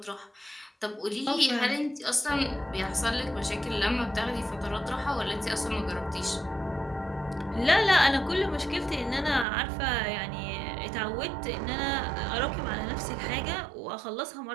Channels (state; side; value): drops out; left; at 9.5 s